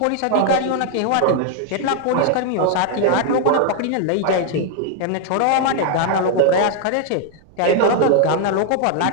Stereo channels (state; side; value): different; both; correlation 0.00